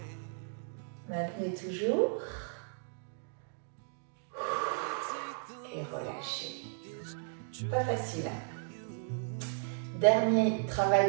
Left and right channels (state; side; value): silent; left; digital silence